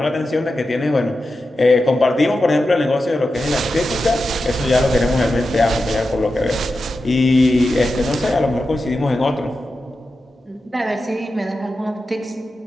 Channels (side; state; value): both; normal; correlation 0.91